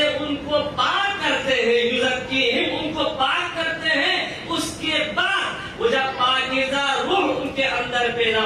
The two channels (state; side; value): identical; both; correlation 1.00